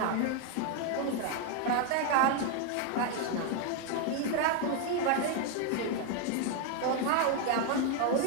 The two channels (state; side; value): different; both; correlation 0.01